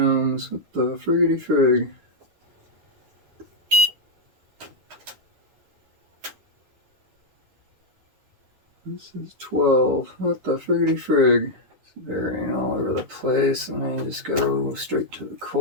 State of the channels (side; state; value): left; late; 10 ms